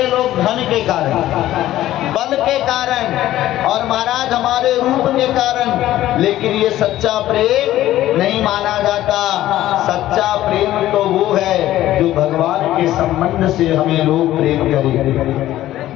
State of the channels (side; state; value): right; quieter; 14.1 dB